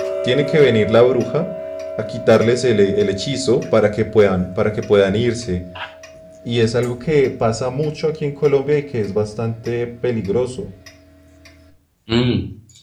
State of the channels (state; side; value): identical; both; correlation 1.00